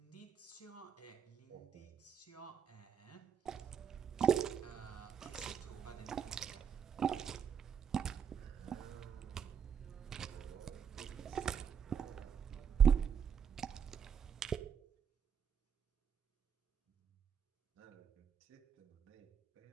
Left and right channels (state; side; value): quieter; left; 7.5 dB